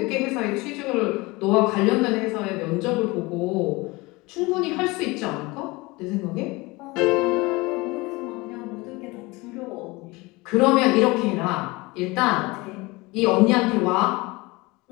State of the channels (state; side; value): quieter; right; 23.3 dB